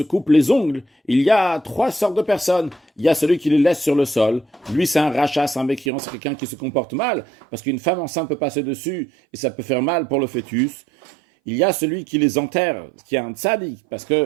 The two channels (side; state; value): left; drops out; at 5.9 s